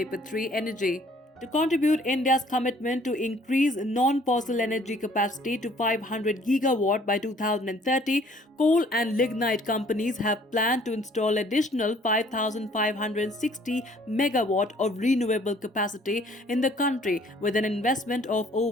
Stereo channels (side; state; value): both; normal; correlation 0.58